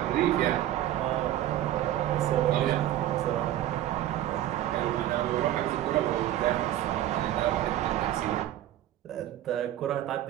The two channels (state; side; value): quieter; left; 13.0 dB